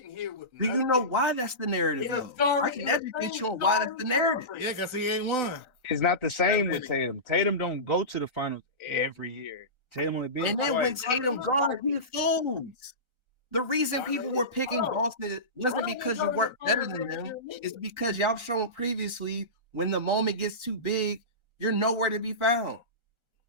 here with nothing. Do you know why that's the narrative though? I can educate you on why that's the narrative. Yeah, because he ain't won. It's not the same with Tatum. Tatum don't go to the finals every year. Tatum only been and then when Tatum gone, he folds. The reason people were picking Boston wasn't because you weren't better than them. It's because y'all shown previously when the moment gets too big, you're nowhere to be found.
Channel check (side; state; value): left; late; 1.4 ms